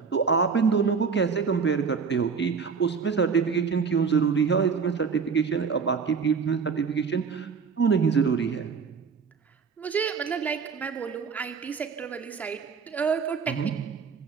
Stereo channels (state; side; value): quieter; left; 5.7 dB